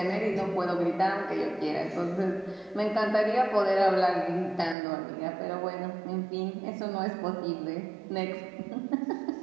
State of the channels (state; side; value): drops out; left; at 4.8 s